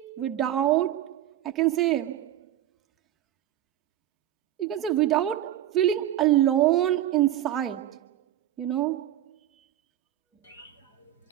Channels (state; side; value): quieter; left; 12.7 dB